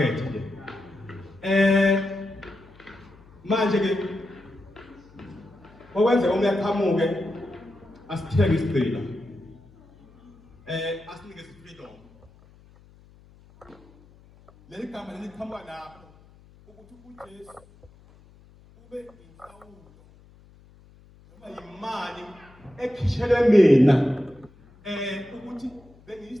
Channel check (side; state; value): left; noise; hum, 26 dB below the sound